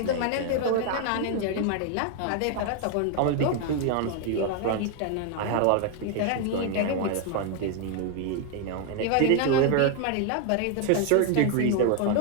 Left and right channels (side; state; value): both; different; correlation 0.01